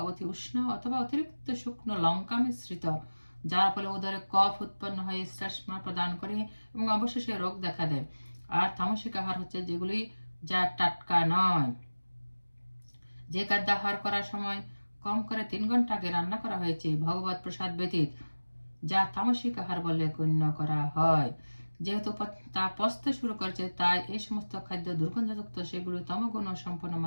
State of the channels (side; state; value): both; inverted; correlation -1.00